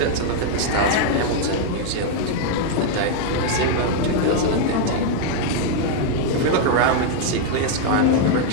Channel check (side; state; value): both; different; correlation 0.00